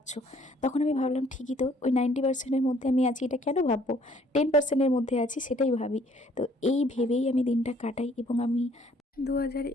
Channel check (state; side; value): normal; both; correlation 0.61